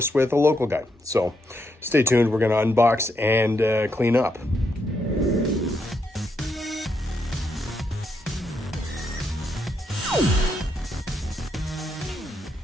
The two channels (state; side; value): normal; both; correlation 0.79